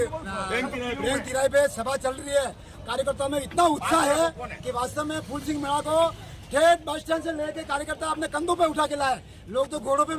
बैंक तिराहे पे सभा चल रही है। कार्यकर्ताओं में इतना उत्साह है कि वास्तव में फूल सिंह मीणा को ठेठ बस स्टैंड से लेके कार्यकर्ता अपने कंधों पे उठा के लाए। लोग तो घोड़ों पे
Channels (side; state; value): both; identical; correlation 1.00